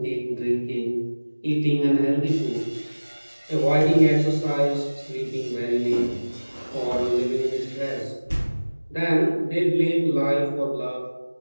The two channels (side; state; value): both; inverted; correlation -1.00